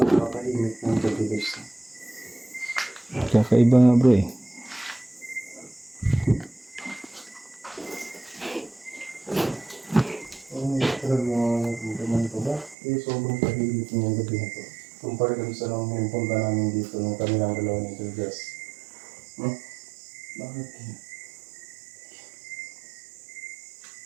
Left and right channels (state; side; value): drops out; left; at 12.8 s